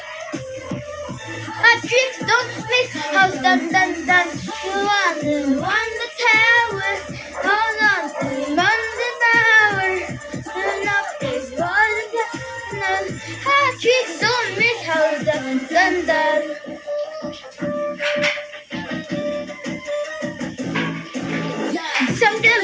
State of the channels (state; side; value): identical; both; correlation 1.00